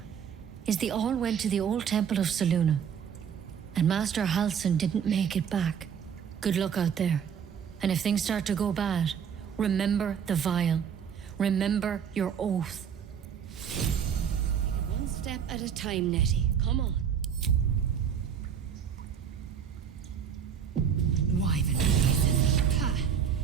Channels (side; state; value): left; quieter; 7.8 dB